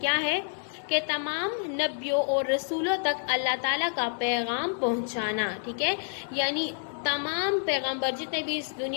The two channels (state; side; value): silent; right; 59 dB below the other